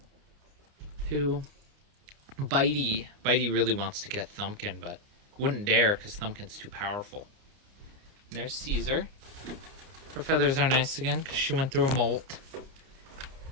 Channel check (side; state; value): left; late; 29 ms